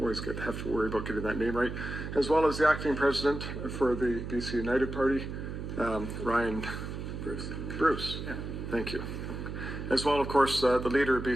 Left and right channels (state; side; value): noise; right; hum, 7 dB below the sound